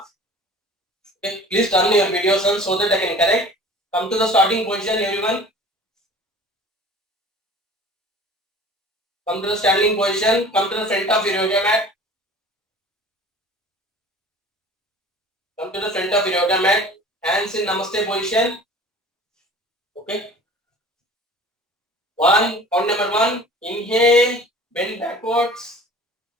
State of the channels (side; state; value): both; normal; correlation 0.44